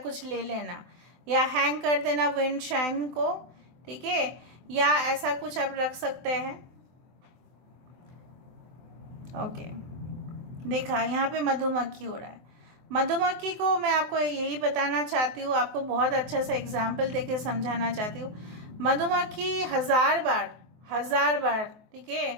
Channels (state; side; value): late; left; 24 ms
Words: ले लेना, या हैंग कर देना विंड शाइन को, ठीक है, या ऐसा कुछ आप रख सकते हैं। ओके, देखा यहाँ पे मधुमक्खी हो रहा है। मधुमक्खी को मैं आपको यही बताना चाहती हूँ, आपको बहुत अच्छा सा एग्जाम्पल देके समझाना चाहती हूँ। मधुमक्खी 1000 बार, ठीक